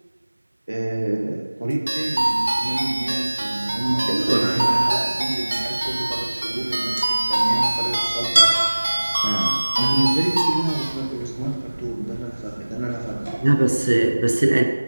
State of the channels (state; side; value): inverted; both; correlation -1.00